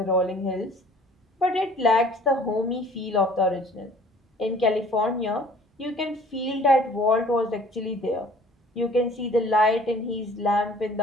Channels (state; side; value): normal; both; correlation 0.51